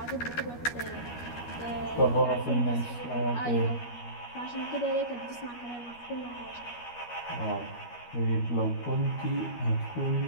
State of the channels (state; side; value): late; right; 12 ms